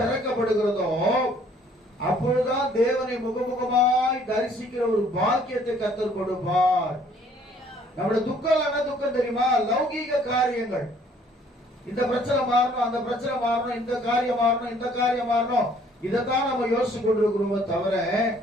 அப்பொழுதுதான் தேவனை முகமுகமாய் தரிசிக்கிற ஒரு பாக்கியத்தை கர்த்தர் கொடுப்பார். நம்முடைய துக்கம் என்ன துக்கம் தெரியுமா? லௌகீக காரியங்கள். இந்த பிரச்சனை மாறணும், அந்த பிரச்சனை மாறணும், இந்த காரியம் மாறணும், இந்த காரியம் மாறணும், இதைத்தான் நம்ம யோசிச்சு கொண்டிருக்கிறோமே தவிர,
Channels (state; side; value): normal; both; correlation 0.60